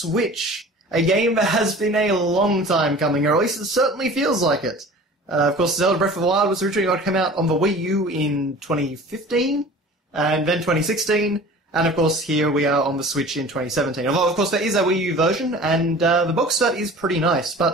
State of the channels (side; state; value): both; normal; correlation 0.42